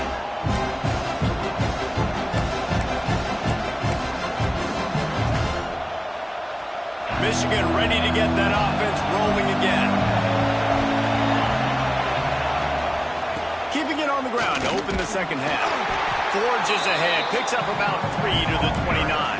Michigan ready to get that offense rolling again. Keeping it on the ground to open the second half. Forges ahead, picks up about 3 to the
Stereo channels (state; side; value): identical; both; correlation 1.00